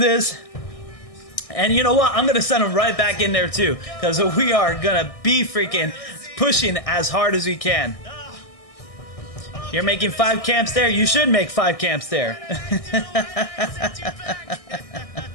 And you know what? I'm going to send them right back in there too. Because we are going to be freaking pushing as hard as we can. You're making 5 camps there? You should make 5 camps there.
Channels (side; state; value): right; late; 1.6 ms